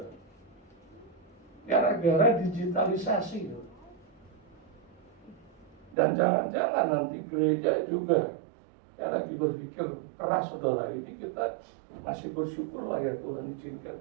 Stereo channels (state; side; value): drops out; left; at 6.0 s